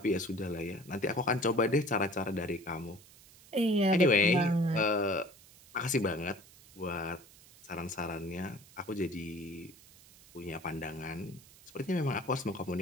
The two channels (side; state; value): right; noise; hiss, 23 dB below the sound